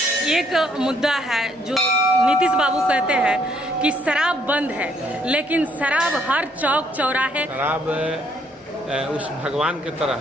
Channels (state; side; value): normal; both; correlation 0.68